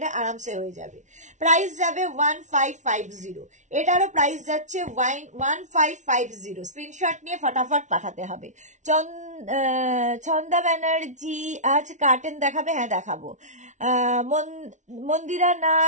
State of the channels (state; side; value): late; left; 0.35 ms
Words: আরামসে হয়ে যাবে। প্রাইস যাবে 1550। এটারও প্রাইস যাচ্ছে 1550। স্ক্রিনশট নিয়ে ফটাফট পাঠাতে হবে। ছন্দা ব্যানার্জি আজ কার্টেন দেখাবে? হ্যাঁ দেখাবো। মন্দিরা